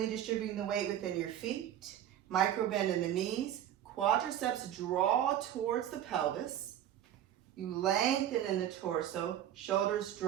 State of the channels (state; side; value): quieter; left; 11.1 dB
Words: distributing the weight within your feet. Micro bend in the knees. Quadriceps draw towards the pelvis. You lengthen in the torso. Shoulders